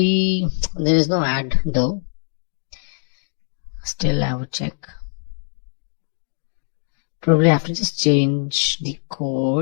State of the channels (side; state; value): right; silent; 58 dB below the other